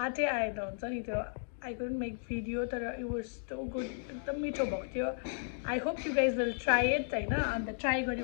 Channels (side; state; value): right; silent; digital silence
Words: आएन हुन्छ नि त्यो। आई कुडन्ट मेक भिडियो, तर इट वाज सो गुड, एकदम मिठो भएको थियो। I hope you guys will try it होइन। अन्त ट्राई